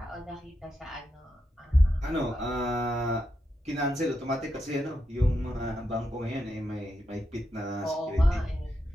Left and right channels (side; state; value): both; normal; correlation 0.85